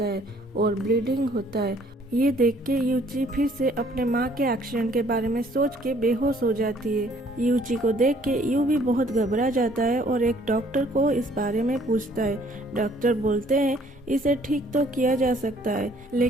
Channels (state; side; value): normal; both; correlation 0.60